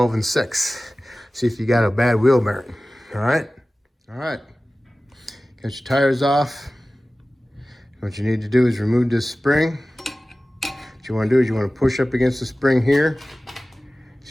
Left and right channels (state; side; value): normal; both; correlation 0.97